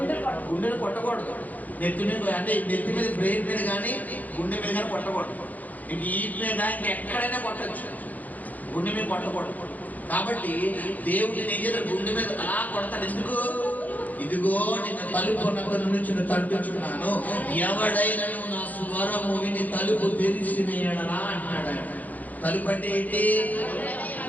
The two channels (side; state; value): right; late; 0.080 ms